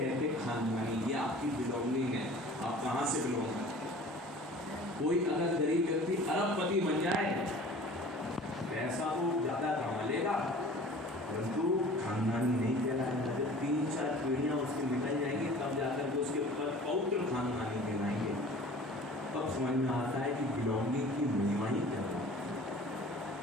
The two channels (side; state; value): both; normal; correlation 0.44